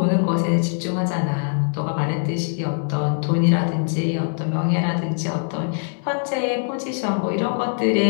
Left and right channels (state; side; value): silent; right; digital silence